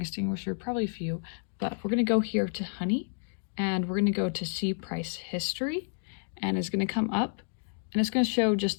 probably a few, but we're going to go here to Honey, and we're going to go to see price history, and it's going to come up, and it's going to show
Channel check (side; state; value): right; silent; digital silence